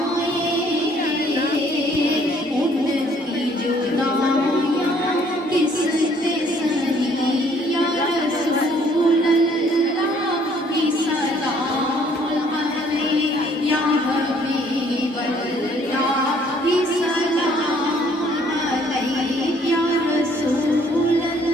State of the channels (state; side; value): normal; both; correlation 0.62